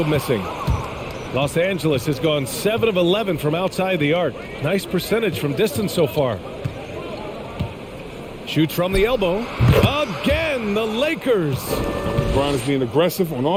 missing. Los Angeles has gone 7 of 11 from outside the arc. Nice percentage from distance so far. Shoots from the elbow. Again, the Lakers. LeBron is being aggressive on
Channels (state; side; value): identical; both; correlation 1.00